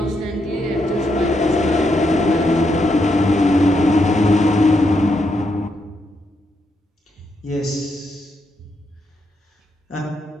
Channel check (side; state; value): both; normal; correlation 0.80